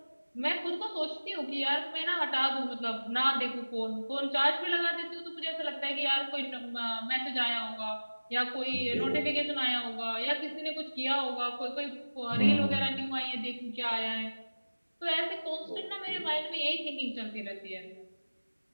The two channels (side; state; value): both; inverted; correlation -1.00